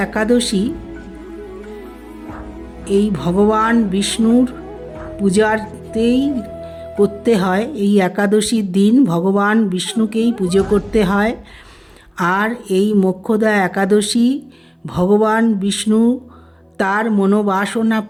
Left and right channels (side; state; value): both; identical; correlation 1.00